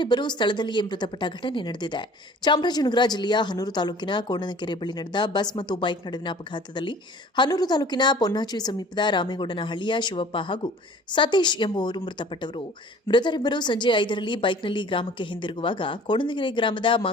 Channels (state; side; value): normal; both; correlation 0.48